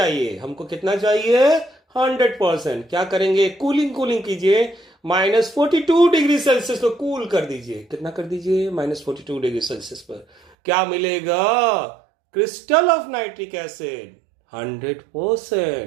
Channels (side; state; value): left; drops out; at 10.5 s